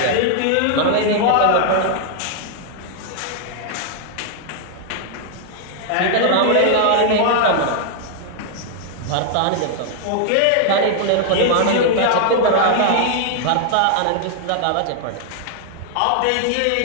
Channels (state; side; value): different; both; correlation 0.00